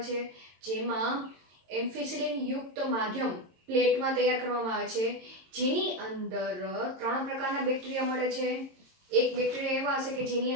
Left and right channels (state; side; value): late; left; 22 ms